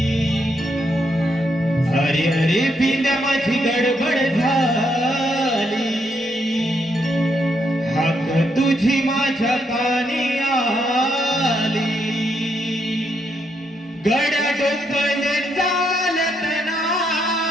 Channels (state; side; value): normal; both; correlation 0.77